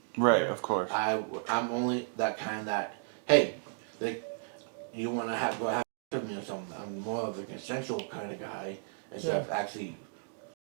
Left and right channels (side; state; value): left; silent; digital silence